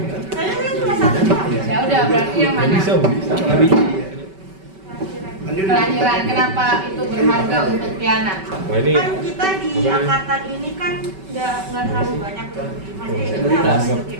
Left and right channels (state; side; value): late; left; 5.2 ms